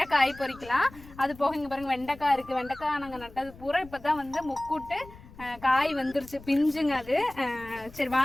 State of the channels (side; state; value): left; noise; rumble, 20 dB below the sound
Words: காய் பறிக்கலாம். அது போக இங்க பாருங்க வெண்டைக்காய் இருக்கு. வெண்டைக்காய் நாங்க நட்டது பூரா இப்பதான் வந்து முக்கூட்டு காய் வந்துருச்சு, பிஞ்சுங்க அது. சரி